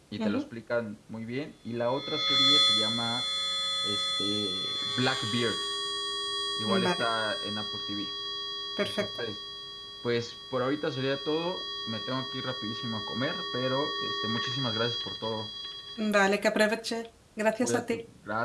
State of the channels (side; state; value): both; identical; correlation 1.00